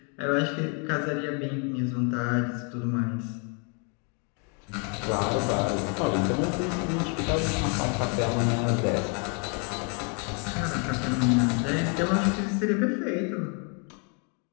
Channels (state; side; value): quieter; right; 37.3 dB